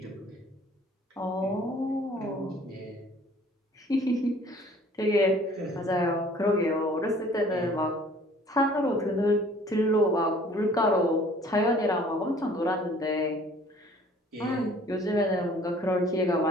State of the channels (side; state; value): both; normal; correlation 0.53